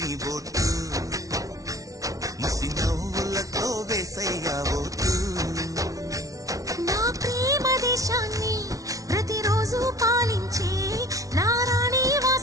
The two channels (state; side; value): late; left; 0.17 ms